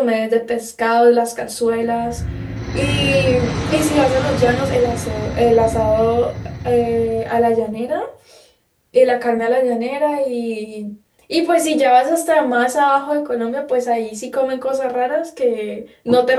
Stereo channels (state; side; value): identical; both; correlation 1.00